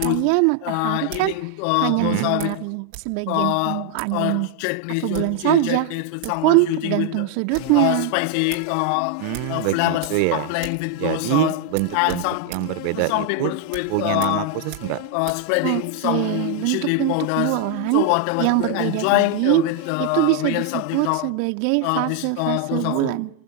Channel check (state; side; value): different; both; correlation 0.00